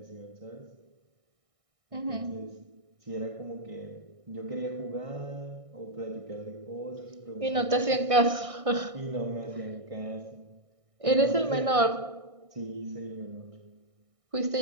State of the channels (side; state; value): left; late; 1.6 ms